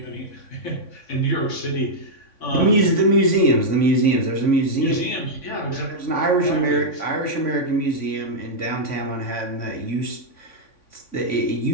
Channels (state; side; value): late; right; 3.6 ms